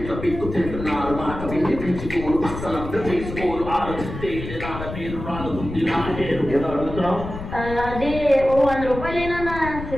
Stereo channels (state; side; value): noise; left; rumble, 9 dB below the sound